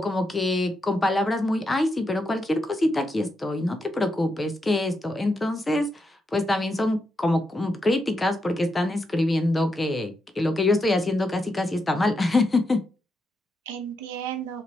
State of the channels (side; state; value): both; normal; correlation 0.83